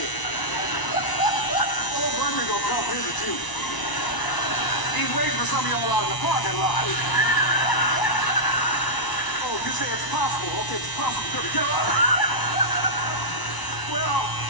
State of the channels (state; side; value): late; right; 1.0 ms